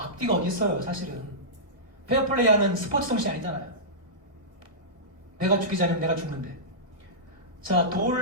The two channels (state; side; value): late; left; 1.6 ms